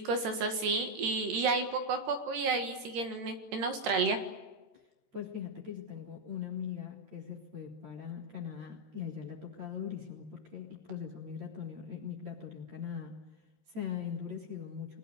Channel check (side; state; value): left; late; 13 ms